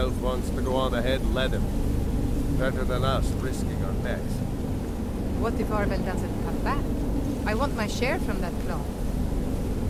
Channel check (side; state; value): both; identical; correlation 1.00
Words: wants to go on ahead, let him. Better than us risking our necks. What if Arben doesn't come back? I want my share from that claw.